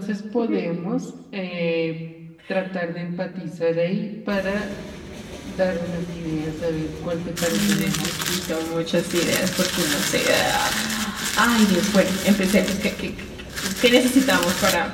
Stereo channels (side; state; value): both; identical; correlation 1.00